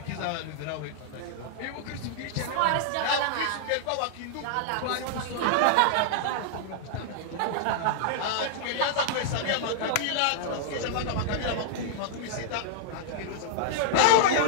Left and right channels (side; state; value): both; different; correlation -0.01